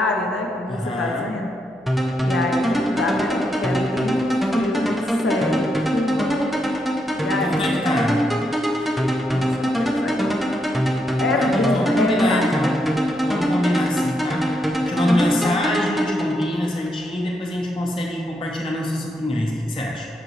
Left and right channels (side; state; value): right; noise; hum, 30 dB below the sound